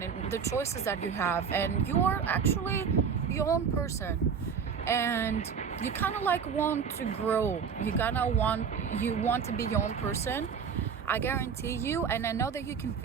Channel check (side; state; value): left; quieter; 6.6 dB